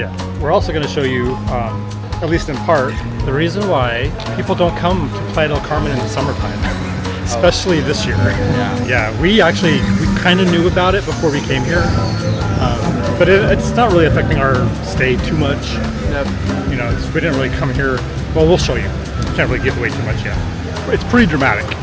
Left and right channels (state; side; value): identical; both; correlation 1.00